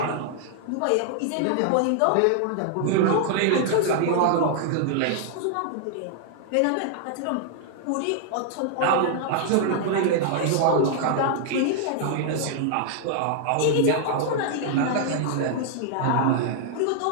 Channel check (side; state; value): both; different; correlation -0.01